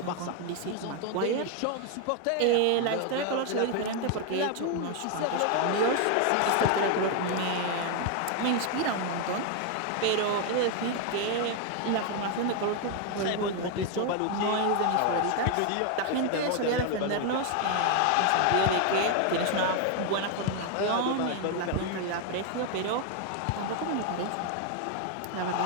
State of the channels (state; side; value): different; both; correlation 0.01